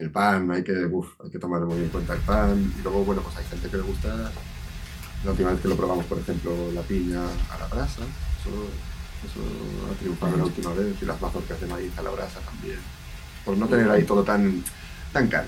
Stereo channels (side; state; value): both; identical; correlation 1.00